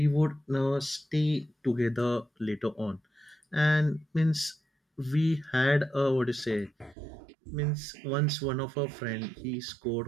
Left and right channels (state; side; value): drops out; left; at 7.0 s